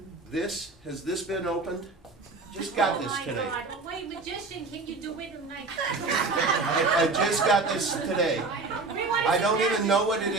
has this been opened? Just got this today. Oh my God, wait, magician, can you do it tonight? I just got this today. I don't even know what it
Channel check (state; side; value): quieter; left; 3.7 dB